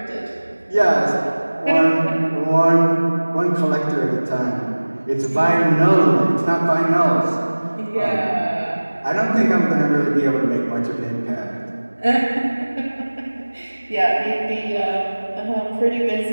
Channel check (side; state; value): both; inverted; correlation -1.00